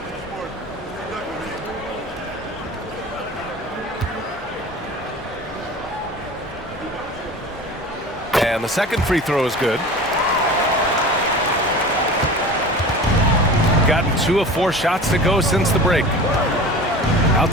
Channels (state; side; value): normal; both; correlation 0.37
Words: And the second free throw is good. Gotten 2 of 4 shots to go since the break.